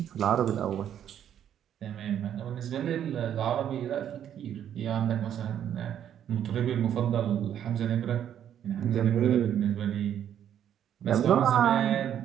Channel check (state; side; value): quieter; left; 9.9 dB